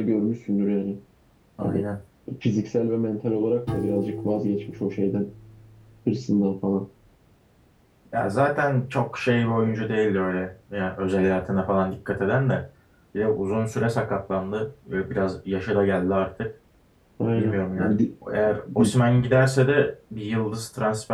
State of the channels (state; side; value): identical; both; correlation 1.00